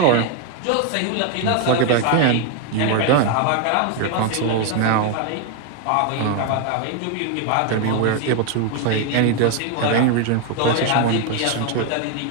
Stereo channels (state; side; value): different; both; correlation 0.01